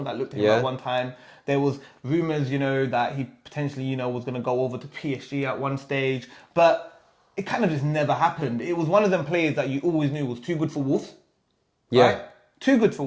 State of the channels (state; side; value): identical; both; correlation 1.00